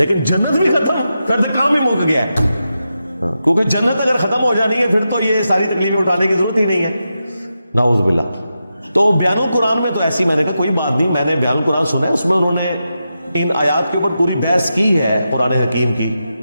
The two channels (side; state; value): both; inverted; correlation -0.88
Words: جنت بھی ختم، پھر تو کام ہی مک گیا ہے، کیونکہ جنت اگر ختم ہو جانی ہے پھر تو یہ ساری تکلیفیں اٹھانے کی ضرورت ہی نہیں ہے۔ نعوذ باللہ۔ تو بیان القرآن میں تو ایسی میں نے کہا کوئی بات نہیں، میں نے بیان القرآن سنا ہے، اس میں انہوں نے ان آیات کے اوپر پوری بحث کی ہے قرآن حکیم کی،